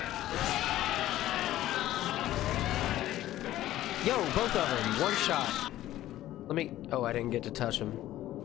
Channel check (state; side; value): quieter; right; 14.2 dB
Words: Yo, both of them, one shot. Let me... Oh, I didn't get to touch them.